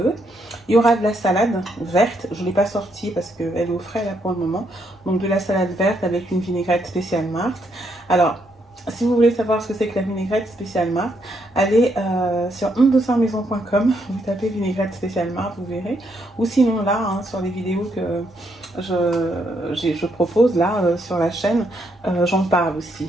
Il y aura de la salade verte. Je ne l'ai pas sortie parce qu'elle est au frais là pour le moment. Donc de la salade verte avec une vinaigrette spéciale Marthe. Alors si vous voulez savoir ce que c'est que la vinaigrette spéciale Marthe, allez sur ondesarmaison.com, vous tapez vinaigrette spéciale Marthe, vous verrez. Ou sinon là, hein, sur les vidéos que je propose là sur la chaîne, j'en parle aussi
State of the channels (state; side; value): normal; both; correlation 0.76